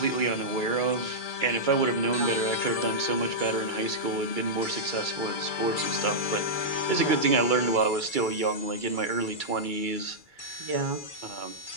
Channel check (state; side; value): late; right; 2.3 ms